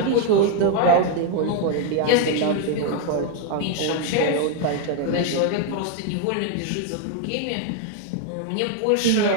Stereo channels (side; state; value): both; different; correlation 0.01